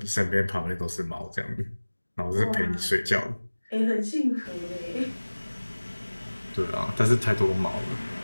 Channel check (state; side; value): inverted; both; correlation -1.00